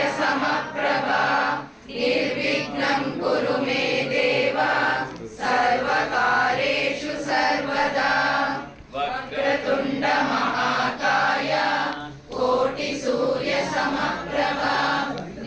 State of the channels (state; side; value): identical; both; correlation 1.00